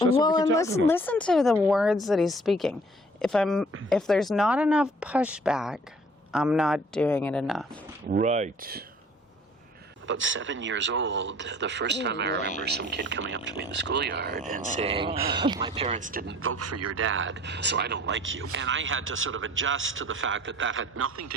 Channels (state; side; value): normal; both; correlation 0.53